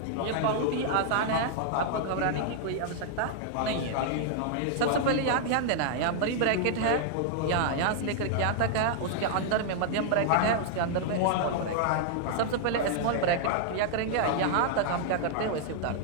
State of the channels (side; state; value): both; different; correlation -0.01